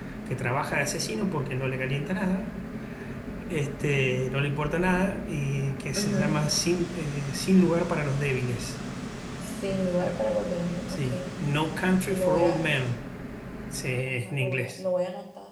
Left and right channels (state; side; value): identical; both; correlation 1.00